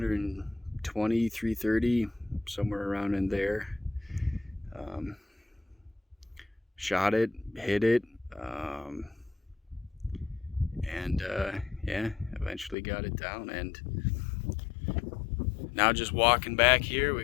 330, somewhere around in there. Shot it, hit it, and yeah, eventually got it down. And now just walking back here, we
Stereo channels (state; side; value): drops out; right; at 12.8 s